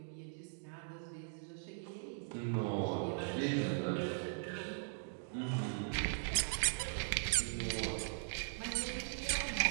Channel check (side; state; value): left; silent; digital silence